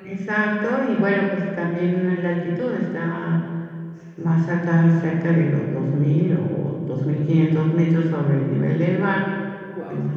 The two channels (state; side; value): identical; both; correlation 1.00